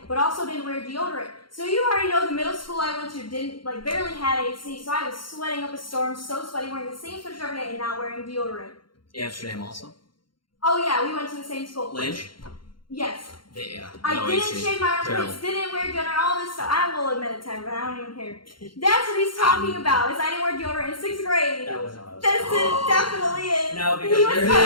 but also didn't wear deodorant. So you already know the middle school I went to didn't barely had AC, so I was sweating up a storm, so sweaty, wearing the same sweatshirt every day and not wearing deodorant. Amsterdam also. Oh yeah, we went to the same school. Lynch. Yes. Yeah. I no didn't AC. shave my Terrible. armpits, didn't wear deodorant, all this stuff. I will admit it to everyone, I don't even care. That's what he's talking about, is I didn't wear deodorant in 6th grade. That wasn't what I was That's talking it, about. definitely is. No, because he was there's-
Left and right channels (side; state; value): right; late; 0.73 ms